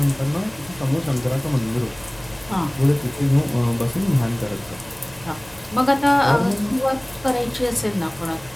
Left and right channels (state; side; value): noise; right; hum, 23 dB below the sound